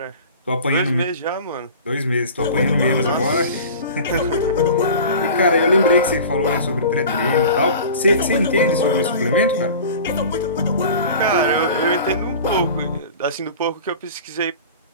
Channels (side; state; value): both; inverted; correlation -0.38